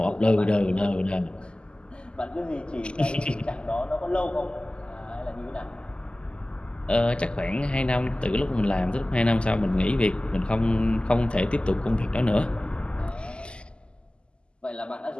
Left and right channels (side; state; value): right; late; 0.050 ms